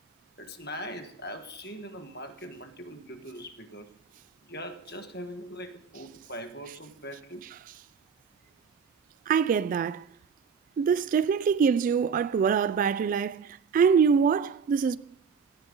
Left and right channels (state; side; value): quieter; left; 6.0 dB